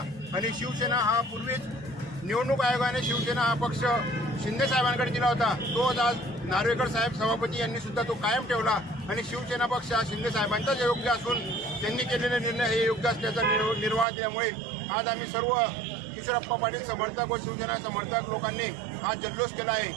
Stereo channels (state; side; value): drops out; left; at 14.1 s